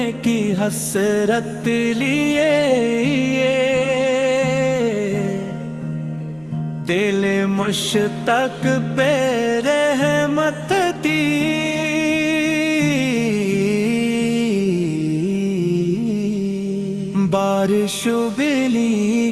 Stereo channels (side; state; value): right; noise; rumble, 30 dB below the sound